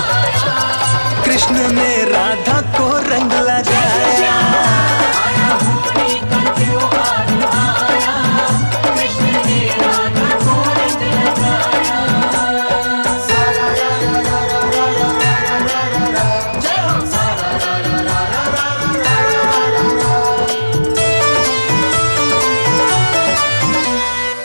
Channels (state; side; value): inverted; both; correlation -1.00